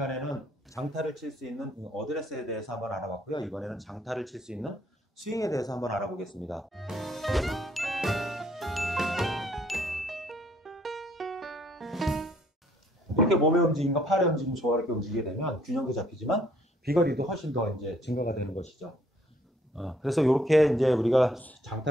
장타를 칠 수 있는 어드레스에 대해서 한번 알아봤고요. 이번에는 장타를 칠 수 있는 스윙에 대해서 한번 알아보겠습니다. 이렇게 몸의 움직임과 팔의 움직임이 조화롭게 움직이게 되면 균형도 잡히지만 비거리도 훨씬 더 이제 증가가 되는 것이죠. 그래서 이렇게 이제 우리가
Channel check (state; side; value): normal; both; correlation 0.65